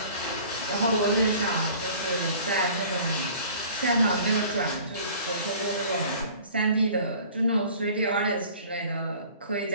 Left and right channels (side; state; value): both; inverted; correlation -0.47